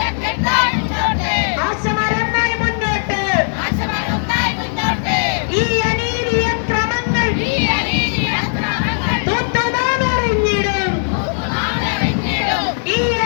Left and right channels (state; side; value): silent; right; 67 dB below the other